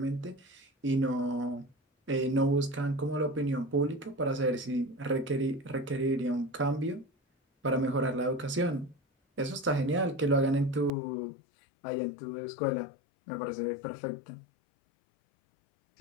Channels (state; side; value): drops out; right; at 10.9 s